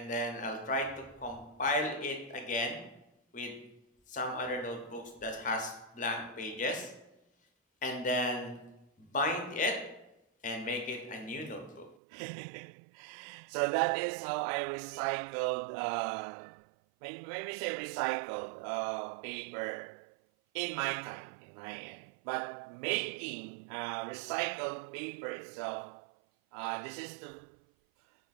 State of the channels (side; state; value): left; drops out; at 12.0 s